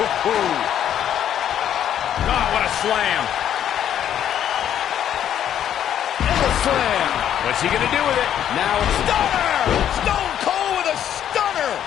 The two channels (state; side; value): quieter; right; 10.2 dB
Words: Oh, what a slam. And a slam. What's he going to do with it? Now it's stunner. Stone Cold with a stunner.